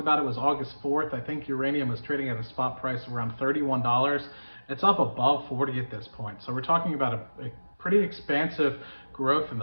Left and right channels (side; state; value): both; inverted; correlation -1.00